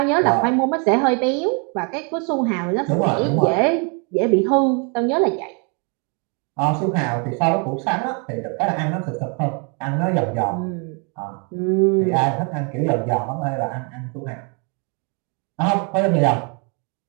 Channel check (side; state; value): left; quieter; 35.8 dB